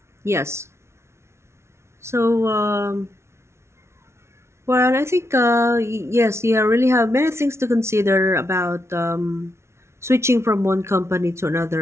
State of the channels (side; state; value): left; late; 0.13 ms